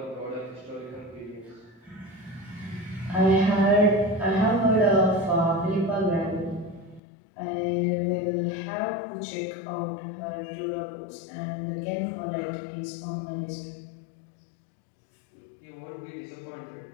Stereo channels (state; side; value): drops out; right; at 7.0 s